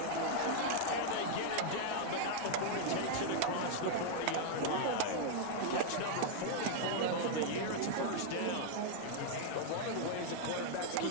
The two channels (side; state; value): both; different; correlation 0.00